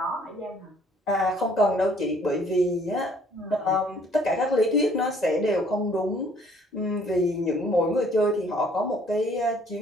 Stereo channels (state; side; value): normal; both; correlation 0.59